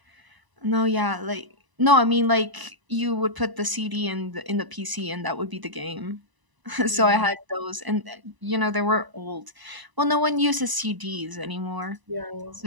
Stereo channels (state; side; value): late; left; 1.0 ms